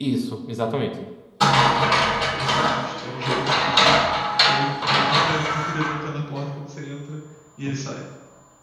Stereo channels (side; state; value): both; identical; correlation 1.00